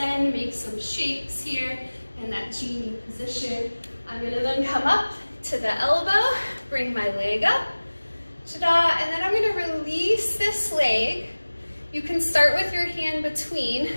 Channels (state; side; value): inverted; both; correlation -1.00